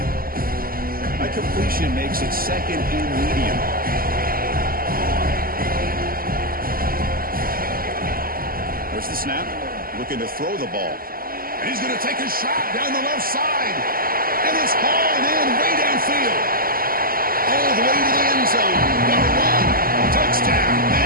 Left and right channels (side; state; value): left; late; 0.42 ms